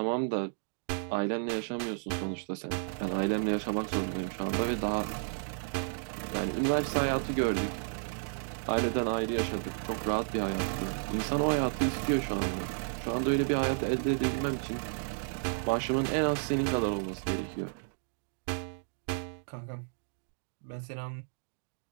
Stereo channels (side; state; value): left; silent; digital silence